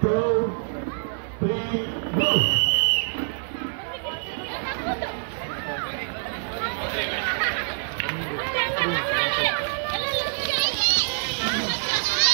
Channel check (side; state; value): left; silent; 55 dB below the other